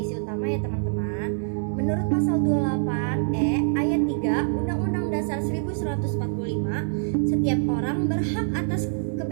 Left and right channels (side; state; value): left; silent; digital silence